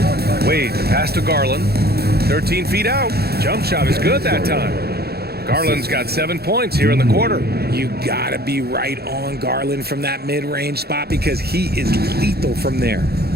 Wade, pass to Garland. 13 feet out. Jump shot is good that time. Garland's got 7 points here in the quarter. You gotta be right on Garland from that mid-range spot because he is lethal from there.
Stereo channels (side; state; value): left; late; 0.46 ms